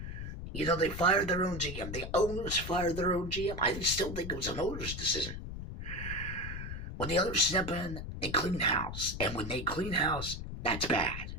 They fired their own GM. The owners fired their own GM. I still think it was an owner's decision. When the owners step in, they clean house. And when they clean house, that's bad.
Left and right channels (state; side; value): noise; left; rumble, 7 dB below the sound